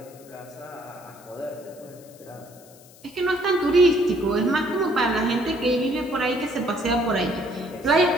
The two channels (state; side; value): noise; left; hiss, 24 dB below the sound